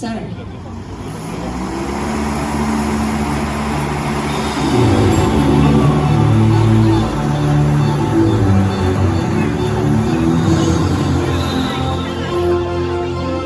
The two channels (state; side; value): identical; both; correlation 1.00